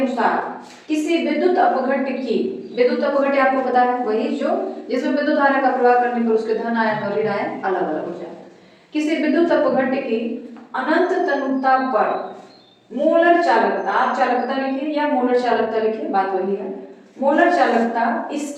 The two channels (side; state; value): both; identical; correlation 1.00